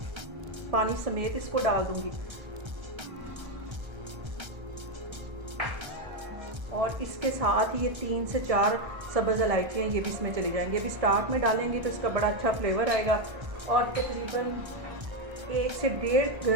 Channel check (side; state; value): left; late; 1.3 ms